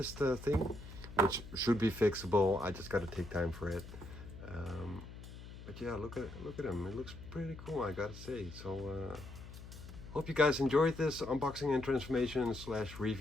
thing, which should be fixable. I just gotta take time for it. But yeah, look at him. It looks pretty cool, I gotta say. So hope you guys enjoyed this unboxing and transformation /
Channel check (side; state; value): left; noise; hum, 14 dB below the sound